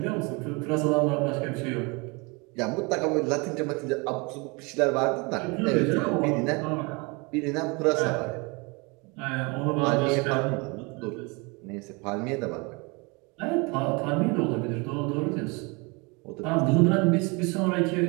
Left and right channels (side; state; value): left; quieter; 28.6 dB